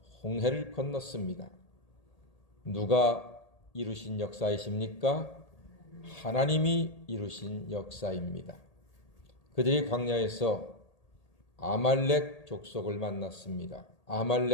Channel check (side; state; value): right; late; 1.8 ms